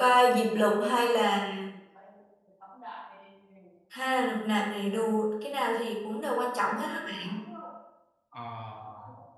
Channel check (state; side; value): identical; both; correlation 1.00